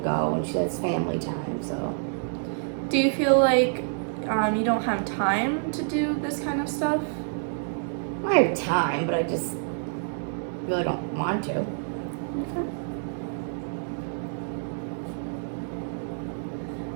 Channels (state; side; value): silent; left; digital silence